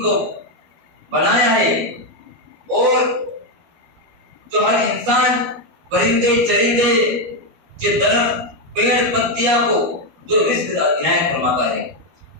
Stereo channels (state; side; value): late; left; 12 ms